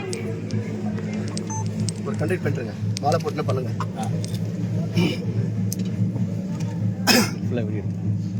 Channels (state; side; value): identical; both; correlation 1.00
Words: ஒரு கண்டக்ட் பண்ணுறேங்க, மாலை போட்டுனா பண்ணுங்க.